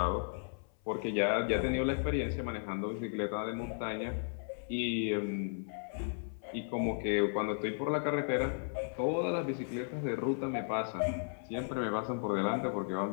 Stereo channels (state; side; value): silent; right; 54 dB below the other